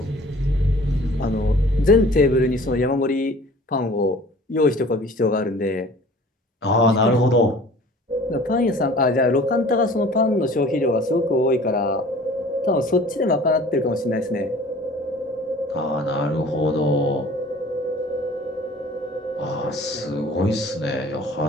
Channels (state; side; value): normal; both; correlation 0.47